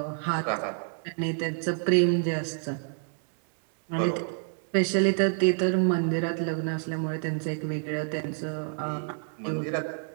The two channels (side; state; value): left; silent; digital silence